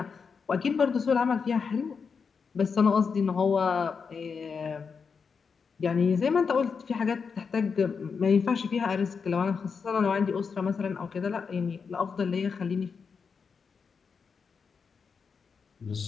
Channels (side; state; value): right; quieter; 5.7 dB